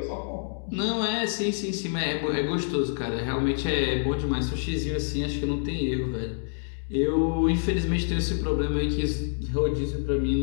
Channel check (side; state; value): right; silent; digital silence